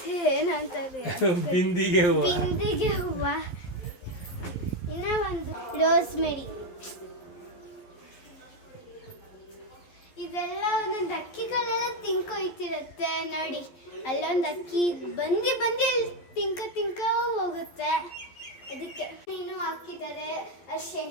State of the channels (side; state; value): right; late; 11 ms